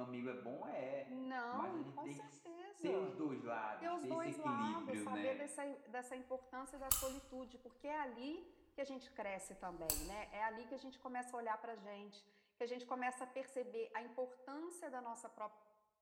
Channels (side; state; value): both; identical; correlation 1.00